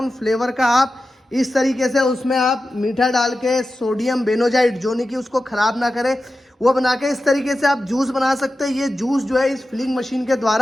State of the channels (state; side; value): normal; both; correlation 0.93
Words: फ्लेवर का आप इस तरीके से उसमें आप मीठा डाल के सोडियम बेनोजाइड, जो नहीं कि उसको ख़राब ना करे, वो बना के इस तरीके से आप जूस बना सकते हैं। ये जूस जो है इस फिलिंग मशीन के